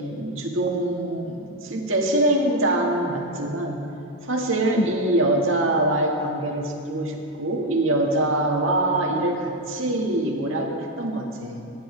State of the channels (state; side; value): normal; both; correlation 0.06